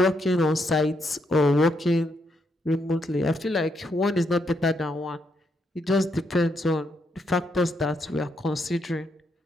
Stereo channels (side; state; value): both; normal; correlation 0.78